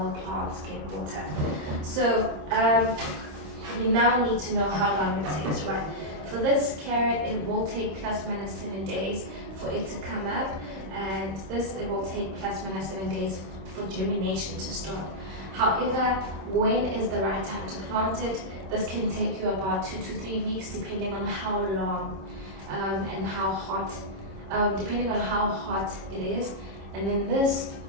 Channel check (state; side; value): late; left; 26 ms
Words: plants get water. So you now need to know how long it takes, right? For this carrot, it will take plus minus 7 days for it to come up, and this, it will take plus minus 7 days for germination to start. However, when is the right time to plant it? This can take you about 2 to 3 weeks, depending on how long and how hot, depending on how hot it is. And then this,